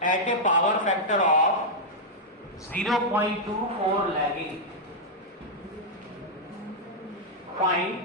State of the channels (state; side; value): normal; both; correlation -0.05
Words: at a power factor of 0.24 lagging। Find